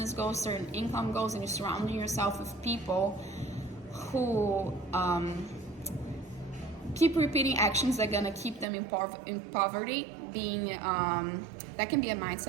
goals, certain income goals, and you're surrounding yourself with people who keep repeating actions that are gonna keep them in poverty, being that can be a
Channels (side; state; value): left; drops out; at 8.7 s